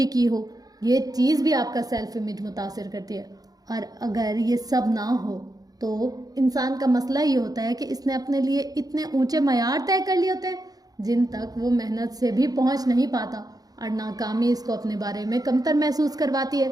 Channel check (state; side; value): late; left; 0.18 ms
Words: کی ہو، یہ چیز بھی آپ کا سیلف امیج متاثر کرتی ہے۔ اور اگر یہ سب نہ ہو تو انسان کا مسئلہ یہ ہوتا ہے کہ اس نے اپنے لیے اتنے اونچے معیار طے کر لیے ہوتے ہیں جن تک وہ محنت سے بھی پہنچ نہیں پاتا، اور ناکامی اس کو اپنے بارے میں کمتر محسوس کرواتی ہے۔